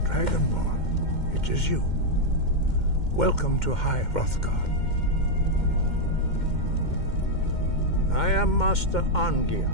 Dragonborn, it is you. Welcome to High Hrothgar. I am Master Arngeir.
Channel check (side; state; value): right; late; 2.1 ms